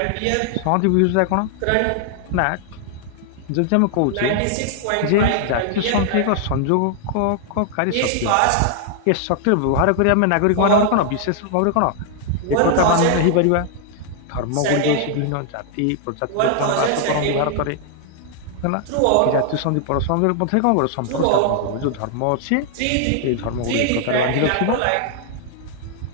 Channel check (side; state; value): both; different; correlation 0.00